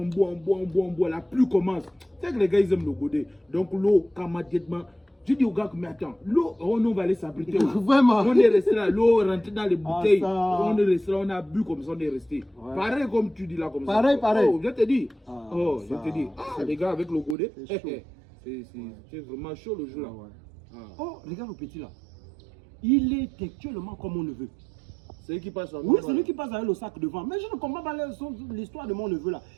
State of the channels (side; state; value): left; drops out; at 17.4 s